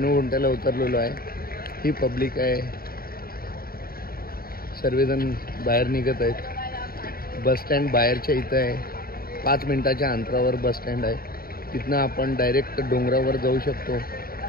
उतरलेलो आहे. ही पब्लिक आहे. सर्वजण बाहेर निघत आहेत. बसस्टँड बाहेरच्या इथं आहे. 5 मिनिटाच्या अंतरावर बसस्टँड आहे. तिथनं आपण डायरेक्ट डोंगरावर जाऊ शकतो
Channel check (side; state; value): right; late; 0.43 ms